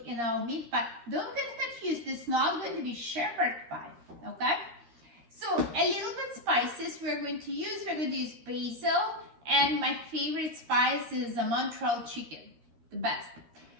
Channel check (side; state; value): left; late; 13 ms